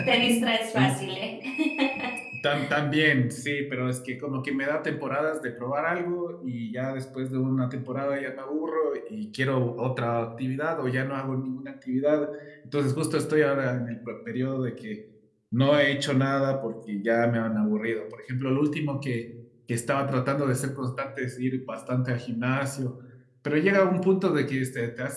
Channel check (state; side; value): identical; both; correlation 1.00